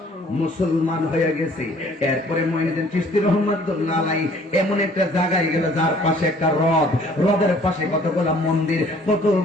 মুসলমান হয়ে গেছে। এরপরে মঈনুদ্দিন চিশতি রাহমাতুল্লাহ আলাইহি এমন একটা জায়গায় গেল যার পাশে একটা হ্রদ, হ্রদের পাশে কতগুলা মন্দির,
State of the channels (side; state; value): both; normal; correlation 0.56